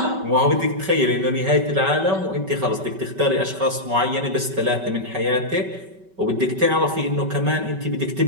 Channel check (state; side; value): late; left; 5.2 ms